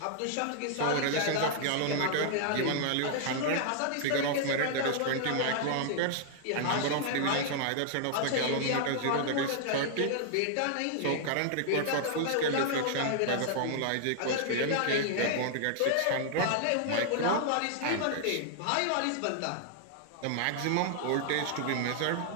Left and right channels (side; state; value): both; different; correlation -0.01